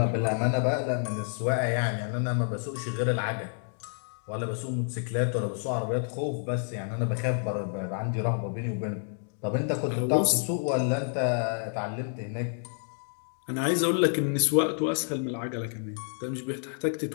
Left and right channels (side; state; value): right; silent; 59 dB below the other